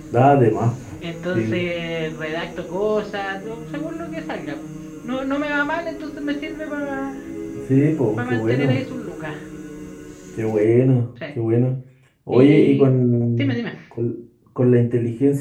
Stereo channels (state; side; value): identical; both; correlation 1.00